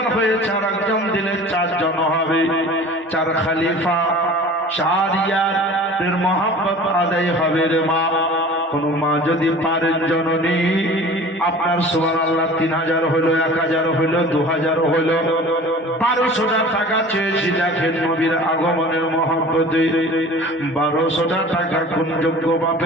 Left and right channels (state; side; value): normal; both; correlation 0.42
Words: হয়েছে, আর একজন দিলে 4 জন হবে। 4 খলিফা, 4 ইয়ারের মহব্বত আদায় হবে রে মা। কোন মা যদি পারেন জননী, আপনার সুবহানাল্লাহ 3000 হলো, 1000 হলো, 2000 হলো, 1200 টাকা চেয়েছি। দেখেন নবীর আগমনের মহব্বতে 1200 টাকা কোন যোগ্য